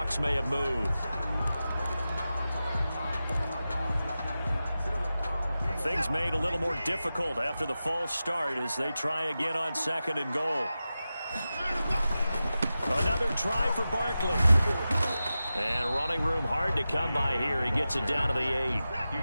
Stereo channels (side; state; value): both; inverted; correlation -0.93